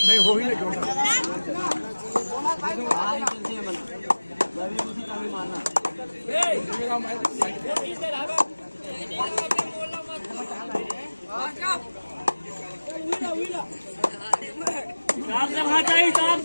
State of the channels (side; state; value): both; inverted; correlation -1.00